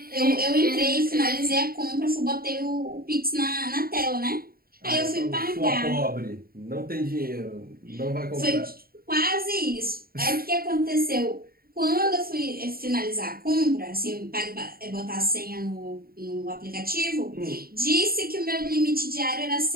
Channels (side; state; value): left; late; 0.43 ms